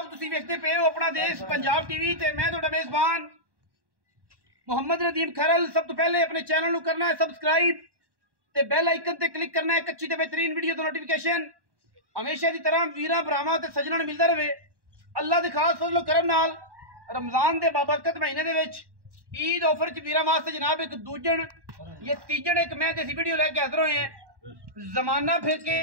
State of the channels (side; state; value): left; late; 1.1 ms